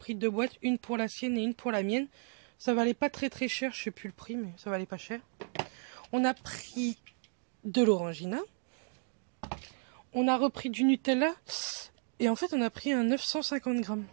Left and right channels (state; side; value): silent; left; 55 dB below the other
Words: 2 boîtes. Une pour la sienne et une pour la mienne. Ça valait pas très très cher. Je sais plus le prix, mais ça valait pas cher. On a pris de l'orangina. On a repris du Nutella. Et en fait, on a pris un 950 grammes.